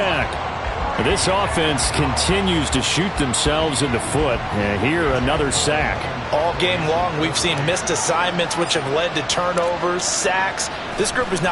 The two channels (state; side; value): identical; both; correlation 1.00